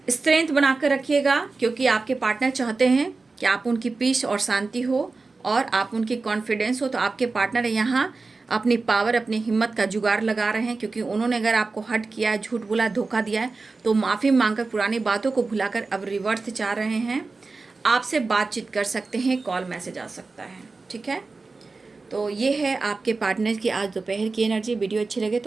स्ट्रेंथ बनाकर रखिएगा, क्योंकि आपके पार्टनर चाहते हैं कि आप उनकी पीस और शांति हो और आप उनकी कॉन्फिडेंस हो। तो आपके पार्टनर यहाँ अपनी पावर, अपनी हिम्मत का जुगाड़ लगा रहे हैं, क्योंकि उन्होंने अगर आपको हट किया है, झूठ बोला, धोखा दिया है, तो माफ़ी मांगकर पुरानी बातों को भुलाकर अब रिवर्स चाह रहे हैं। आपसे बातचीत कर सकते हैं, कॉल मैसेज आ सकता है, ठीक है। तो ये है आपके पार्टनर की आज दोपहर की एनर्जी। वीडियो अच्छी लगे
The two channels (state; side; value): quieter; left; 3.9 dB